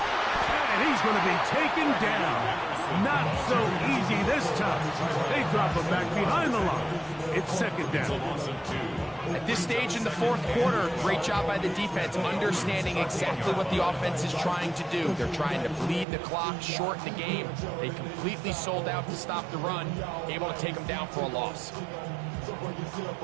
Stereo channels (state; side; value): drops out; left; at 16.1 s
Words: And he's going to be taken down. Not so easy this time. They drop him back behind the line. It's second down. At this stage in the fourth quarter, great job by the defense, understanding exactly what the offense is trying to do. They're trying to bleed the clock, shorten the game. They completely sold out to stop the run, able to take them down for a loss.